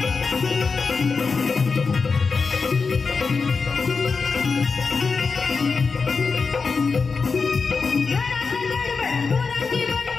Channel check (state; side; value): quieter; right; 4.8 dB